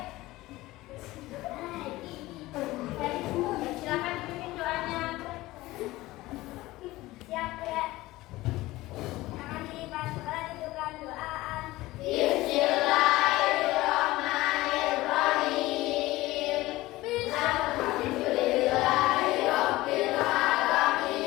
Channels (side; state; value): right; quieter; 18.4 dB